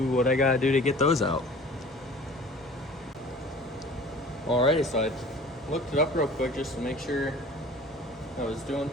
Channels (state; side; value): normal; both; correlation 0.44